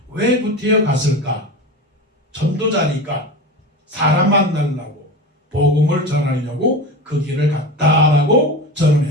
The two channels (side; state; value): both; normal; correlation 0.27